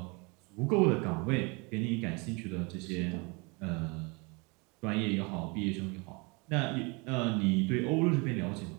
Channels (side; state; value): left; quieter; 29.4 dB